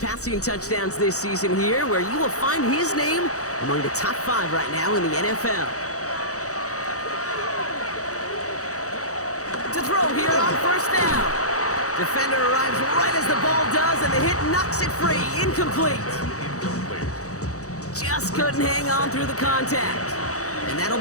touchdowns this season here, where you will find his name among the top 5 right now in the NFL. To throw here on first down. Defender arrives right as the ball does, and the hit knocks it free. Incomplete. Just couldn't hang on through the contact. And that'll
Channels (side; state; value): right; late; 0.65 ms